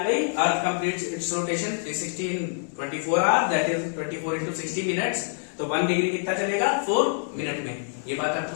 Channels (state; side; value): silent; right; digital silence